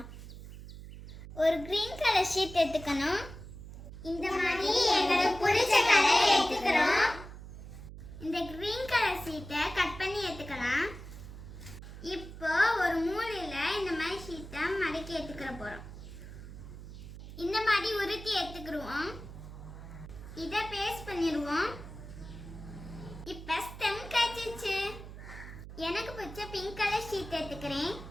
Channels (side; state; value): right; noise; hum, 13 dB below the sound